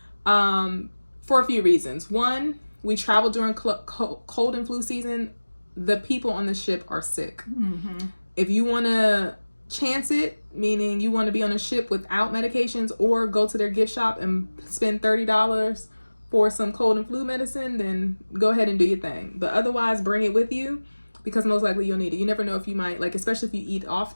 for a few reasons. One, we travel during cold and flu season. The people on the ship are sick. If you want to chance it, meaning you want to be on a ship without medications or go to their gift shop and spend $30 for some cold and flu medicine, then go ahead and do your thing. But otherwise, bring it with you because most likely you'll need it. You never know if you might, like, especially if you eat off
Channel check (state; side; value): inverted; both; correlation -1.00